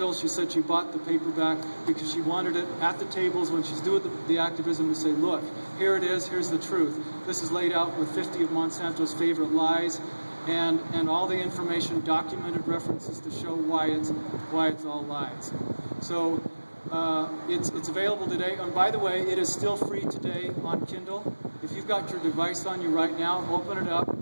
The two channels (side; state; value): both; inverted; correlation -1.00